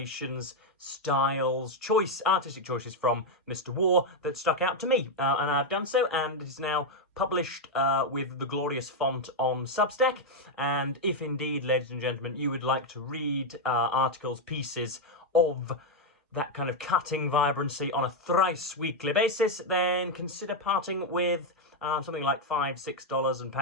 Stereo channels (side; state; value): both; normal; correlation 0.02